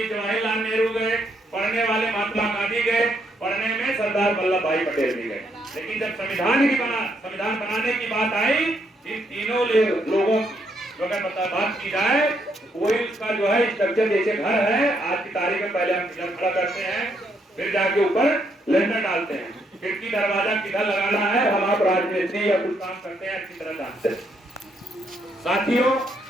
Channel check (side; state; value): both; normal; correlation 0.75